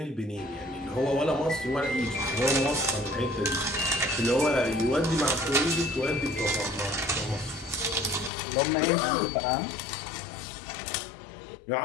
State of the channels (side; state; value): right; drops out; at 8.3 s